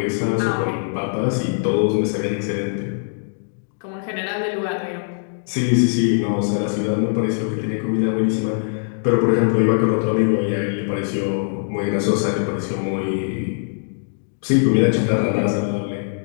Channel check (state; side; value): silent; right; digital silence